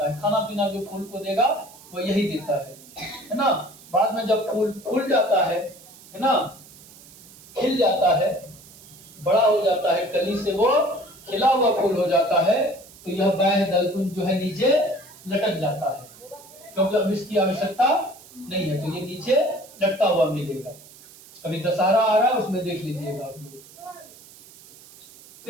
है। खाना पीना जो फूल को देगा वो यही देता है ना। बाद में जब फूल फूल जाता है ना, खिल जाता है, बड़ा हो जाता है, कली से वो खिला हुआ फूल हो जाता है, तो यह बाह्य दलकुंज जो है नीचे लटक जाता है, क्योंकि अब इसकी आवश्यकता नहीं है, तो ये नीचे लटका हुआ मिलेगा। अभी दशहरा आ रहा है, उसमें देख लीजिएगा आप लोग।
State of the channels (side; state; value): right; noise; hiss, 21 dB below the sound